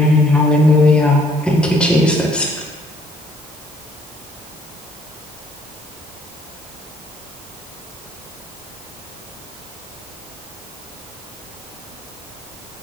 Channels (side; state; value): both; normal; correlation 0.62